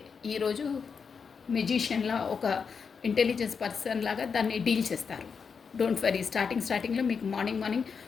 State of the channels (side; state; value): right; quieter; 5.8 dB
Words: ఈరోజు మెజిషియన్లా ఒక ఇంటెలిజెన్స్ పర్సన్ లాగా దాన్ని డీల్ చేస్తారు. Don't worry. స్టార్టింగ్లో మీకు మార్నింగ్